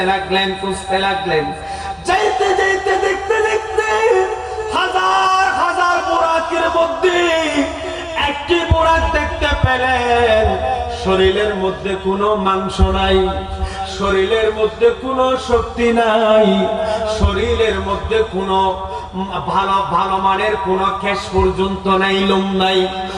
লাগলেন, খুঁজতে লাগলেন। যাইতে যাইতে দেখতে দেখতে হাজার হাজার বুরাকের মধ্যে একটি বুরাক দেখতে পেলেন, শরীরের মধ্যে কোনো মাংস নাই, শরীরের মধ্যে কোনো শক্তি নাই, শরীরের মধ্যে কোনো ভালো ভালো মানের কোনো কেশ পর্যন্ত নাই, লোম নাই।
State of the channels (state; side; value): identical; both; correlation 1.00